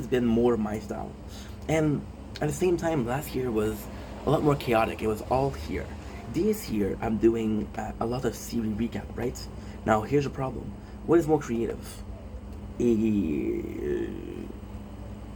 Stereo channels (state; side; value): identical; both; correlation 1.00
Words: been more my style. And at the same time, last year was a lot more chaotic. It was all here. This year, I'm doing a lot of series recap, right? Now, here's the problem. What is more creative?